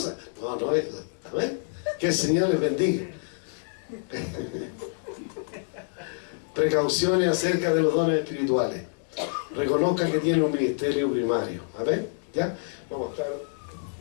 No, no es eso. ¿Amén? Que el Señor les bendiga. Precauciones acerca de los dones espirituales. Reconozca que tiene un ministerio primario. ¿Amén? ¿Ya? Vamos a estar...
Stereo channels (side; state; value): right; silent; digital silence